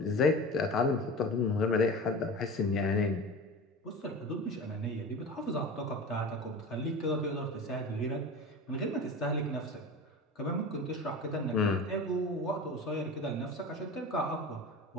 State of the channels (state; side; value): normal; both; correlation 0.32